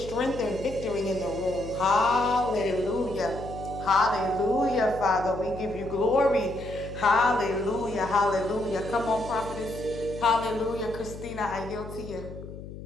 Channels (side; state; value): left; noise; hum, 12 dB below the sound